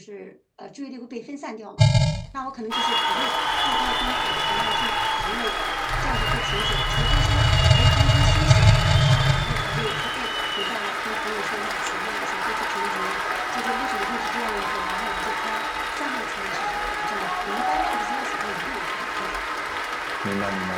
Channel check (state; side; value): identical; both; correlation 1.00